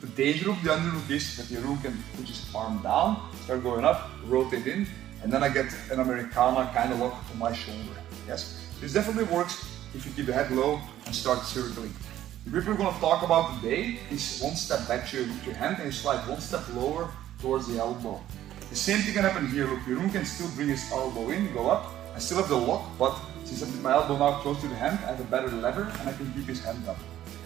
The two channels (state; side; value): quieter; left; 12.6 dB